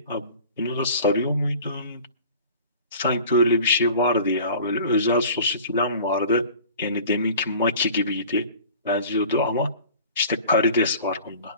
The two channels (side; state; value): both; inverted; correlation -0.43